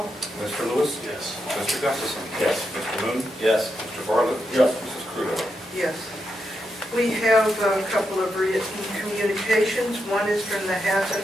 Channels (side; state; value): both; normal; correlation 0.84